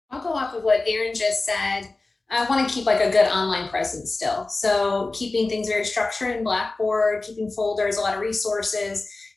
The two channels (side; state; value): right; quieter; 3.3 dB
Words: I'll go off of what Erin just said. I want to keep like a good online presence still. So keeping things very structured in Blackboard, keeping folders, a lot of resources,